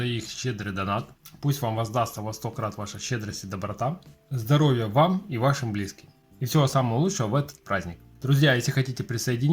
их щедрый донат. Пусть вам воздастся во 100 крат ваша щедрость и доброта. Здоровья вам и вашим близким. И всего самого лучшего в этот праздник. Друзья, если хотите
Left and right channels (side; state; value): both; identical; correlation 1.00